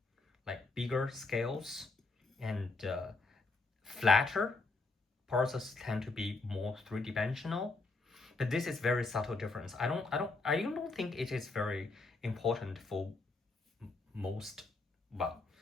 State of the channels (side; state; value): right; quieter; 3.6 dB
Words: like bigger scales, and flatter. Porosus tend to be more three-dimensional, but this is very subtle difference. I don't think it is very important for most, well,